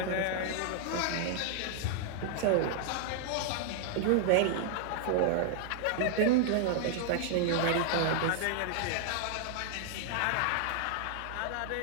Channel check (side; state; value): both; different; correlation -0.01